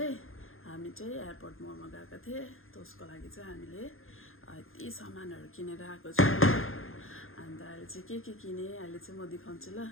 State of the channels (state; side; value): late; right; 0.60 ms